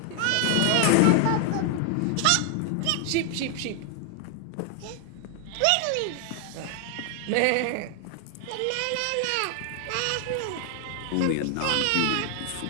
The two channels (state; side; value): different; both; correlation 0.00